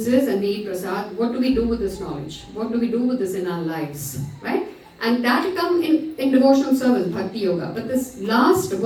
and we eat prasad. What do we do with this knowledge? What do we do with this in our lives, right? And that will come in devotional service, Bhakti Yoga. But this last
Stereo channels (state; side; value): identical; both; correlation 1.00